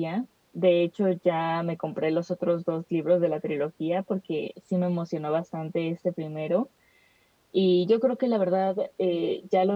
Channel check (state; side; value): identical; both; correlation 1.00